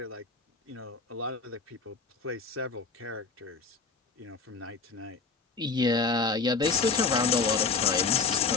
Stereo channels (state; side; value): quieter; right; 4.8 dB